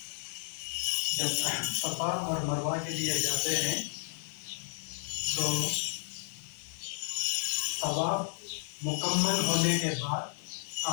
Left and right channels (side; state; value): right; silent; 56 dB below the other